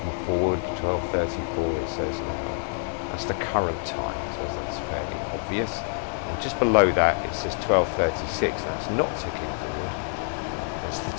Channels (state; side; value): silent; right; 60 dB below the other